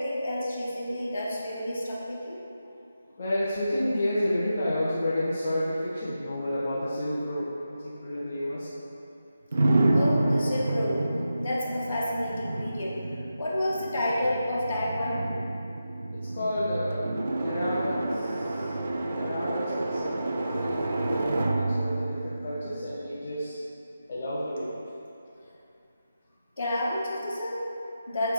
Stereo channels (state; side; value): inverted; both; correlation -0.90